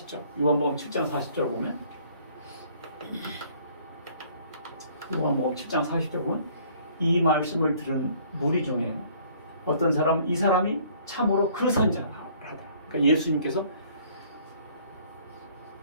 요한복음 7장 40절 보면 요한복음 7장 40절 보면 이 말씀을 들은 무리 중에 어떤 사람은 이 사람이 참으로 그 선지자다. 그러니까 예수님께서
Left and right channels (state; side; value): inverted; both; correlation -0.58